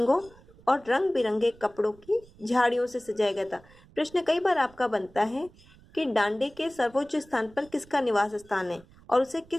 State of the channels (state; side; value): noise; right; rumble, 25 dB below the sound